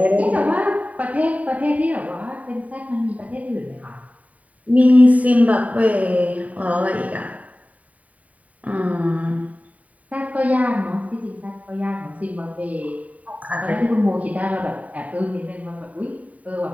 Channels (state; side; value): late; left; 0.070 ms